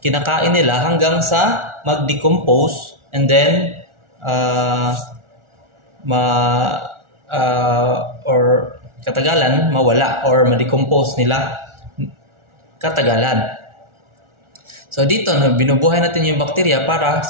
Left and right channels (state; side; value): late; left; 1.4 ms